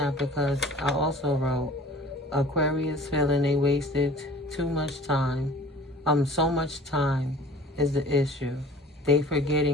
because I also wrote, Aquarius feeling they wasted too much time. So much time is the issue. They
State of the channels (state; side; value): normal; both; correlation 0.46